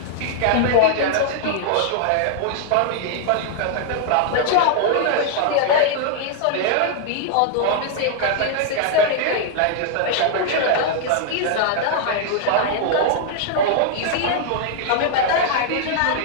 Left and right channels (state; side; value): different; both; correlation -0.01